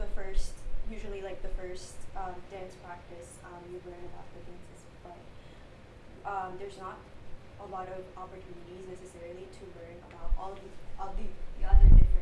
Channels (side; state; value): both; identical; correlation 1.00